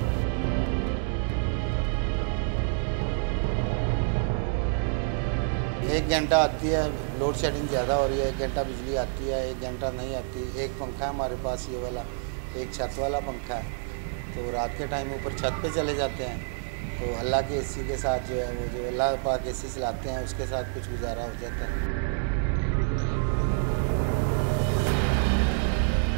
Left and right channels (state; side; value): silent; left; 58 dB below the other